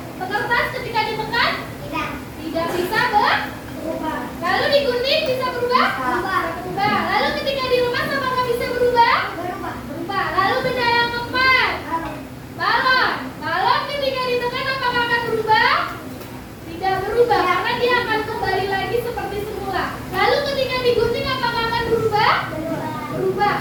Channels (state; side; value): identical; both; correlation 1.00